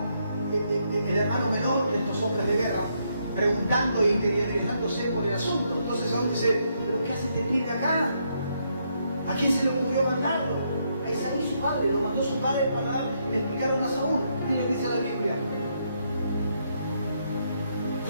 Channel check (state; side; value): inverted; both; correlation -0.76